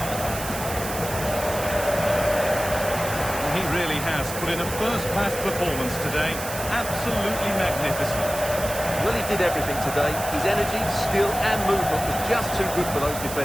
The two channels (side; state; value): right; noise; hiss, 8 dB below the sound